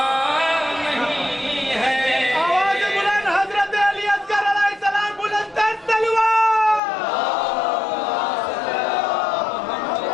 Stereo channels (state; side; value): drops out; right; at 6.8 s